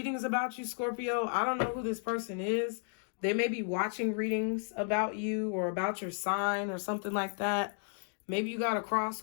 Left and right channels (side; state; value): right; silent; 56 dB below the other